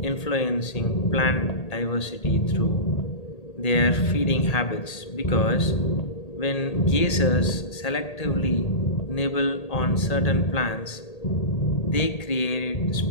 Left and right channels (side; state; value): right; late; 1.8 ms